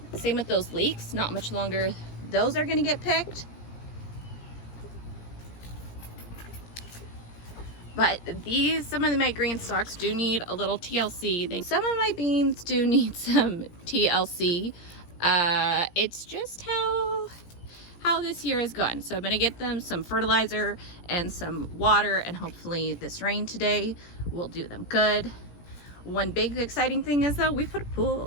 Same with those leeks. Not much longer those are going to get picked. But some of my green stalks do need a little TLC. Some of my beans do need some TLC. It's just how this year has gone. So I'm gonna get them some fertilizer and some water, and hopefully this rain today will do them good. One big exciting thing is though, we put a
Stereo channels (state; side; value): late; right; 17 ms